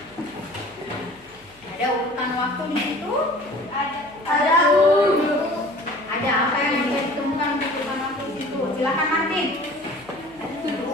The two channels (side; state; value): left; noise; hum, 30 dB below the sound